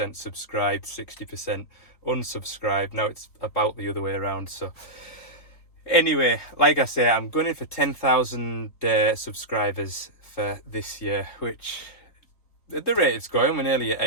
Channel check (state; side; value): late; right; 3.9 ms